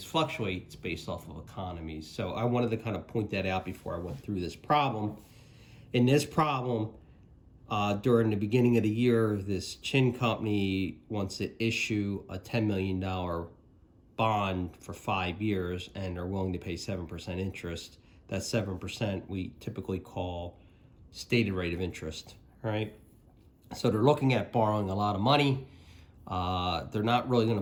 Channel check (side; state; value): both; identical; correlation 1.00